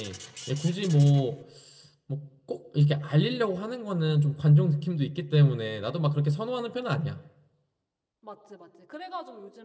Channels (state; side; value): identical; both; correlation 1.00